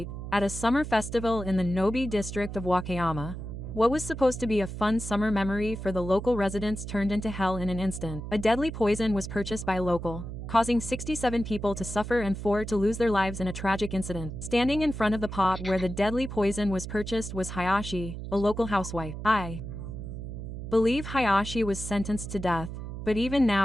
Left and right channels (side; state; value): right; noise; hum, 8 dB below the sound